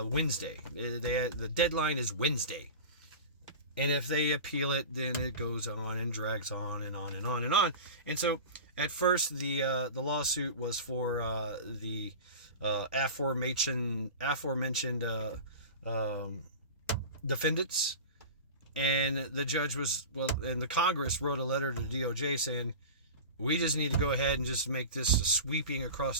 The deadline is Wednesday. And if they appeal it, then it goes on and drags on and on and on and on. And so at first the lawsuit was for the aforementioned defendants. And the judge and the Congress wrote a letter to the DOJ saying, we just need to go ahead and just make this sweeping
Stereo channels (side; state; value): both; inverted; correlation -0.31